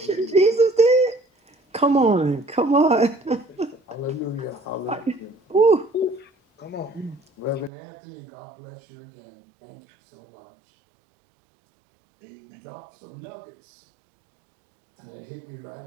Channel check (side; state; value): left; drops out; at 7.7 s